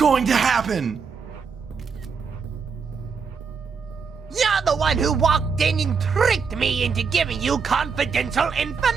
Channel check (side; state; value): left; quieter; 5.7 dB